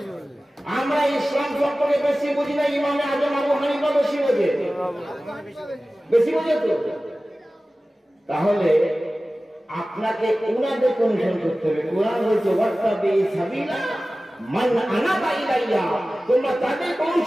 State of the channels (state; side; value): normal; both; correlation 0.96